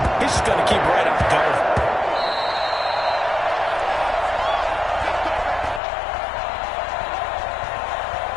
he's just going to keep right on going.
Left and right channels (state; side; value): drops out; right; at 5.8 s